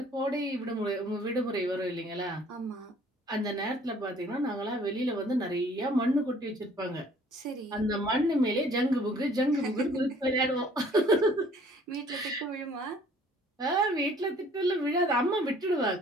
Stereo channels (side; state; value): both; normal; correlation 0.56